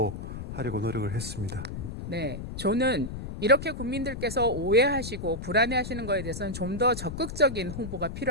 노력을 했습니다. 네, 저는 이렇게 국민들께서 오해하시고 불안해하시는 것에 대해서는 좀 더 적극적인 홍보가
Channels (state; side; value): noise; left; rumble, 8 dB below the sound